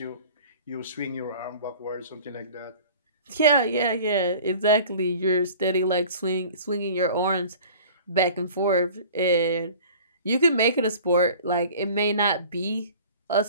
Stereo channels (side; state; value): both; inverted; correlation -0.44